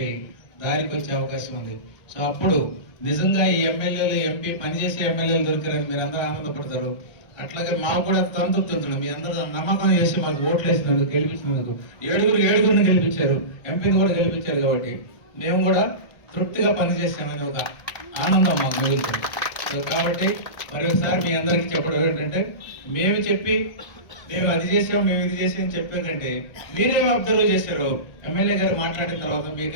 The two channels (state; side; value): late; right; 1.2 ms